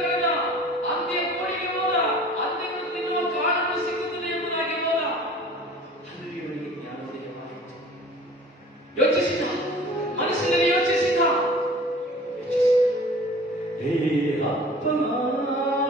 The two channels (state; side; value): normal; both; correlation 0.45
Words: ಕರೆದ, ಅಂತ್ಯ ಕೋಳಿಗೆ ಹೋದ, ಅಂತ್ಯವನ್ನು ತಿನ್ನುವ ಕಾಳನ್ನು ಸಿಗುತ್ತದೆ ಎಂಬುದಾಗಿ ಹೋದ. ಅಲ್ಲಿ ಇವನಿಗೆ ಜ್ಞಾನೋದಯವಾಯಿತು. ಯೋಚಿಸಿದ, ಮನಸ್ಸಿನಲ್ಲಿ ಯೋಚಿಸಿದ, ಹೇ ಅಪ್ಪನ